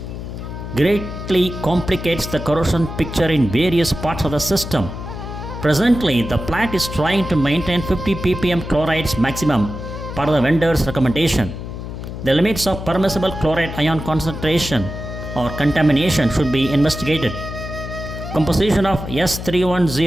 greatly complicates the corrosion picture in various parts of the system. Presently, the plant is trying to maintain 50 ppm chlorides maximum per the vendor's recommendation. The limits of permissible chloride ion concentration or contamination should be investigated. Composition of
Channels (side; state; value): left; noise; hum, 8 dB below the sound